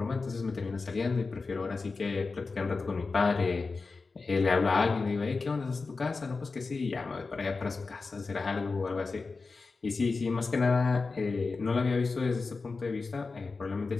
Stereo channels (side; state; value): right; quieter; 4.1 dB